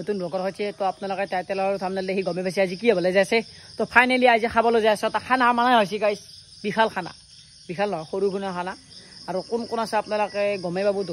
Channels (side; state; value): both; identical; correlation 1.00